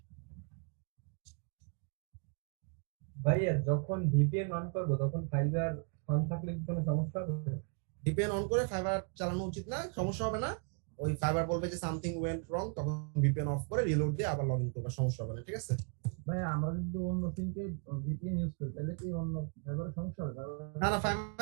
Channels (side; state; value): left; quieter; 38.4 dB